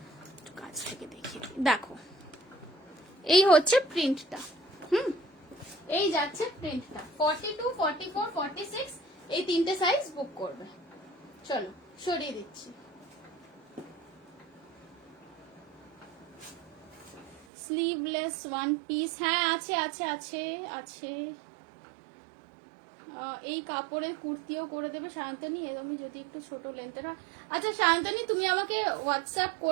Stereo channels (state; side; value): drops out; left; at 17.4 s